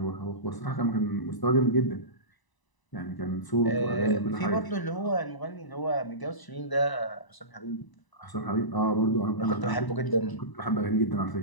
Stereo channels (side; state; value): right; late; 1.0 ms